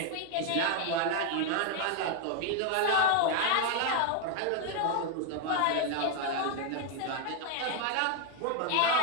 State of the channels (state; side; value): different; both; correlation 0.01